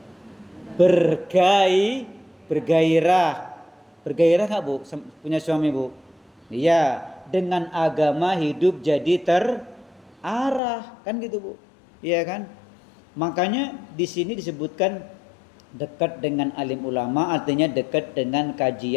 Bergairah. Bergairah nggak bu? Punya suami bu? Iya. Dengan agama hidup jadi terarah, kan gitu bu? Iya kan? Makanya di sini disebutkan Dekat dengan alim ulama artinya dekat dengan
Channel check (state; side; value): drops out; right; at 10.6 s